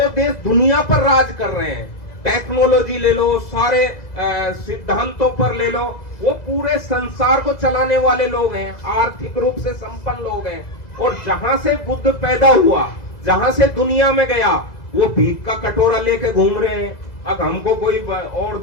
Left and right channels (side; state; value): right; late; 2.0 ms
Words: देश दुनिया पर राज कर रहे हैं। टेक्नोलॉजी ले लो, सारे सिद्धांतों पर ले लो, वो पूरे संसार को चलाने वाले लोग हैं, आर्थिक रूप से संपन्न लोग हैं। और जहां से बुद्ध पैदा हुआ, जहां से दुनिया में गया, वो भीख का कटोरा लेके घूम रहे हैं। अब हमको कोई और